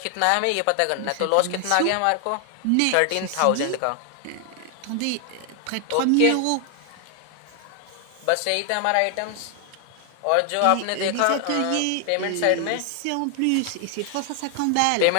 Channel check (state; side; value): different; both; correlation 0.00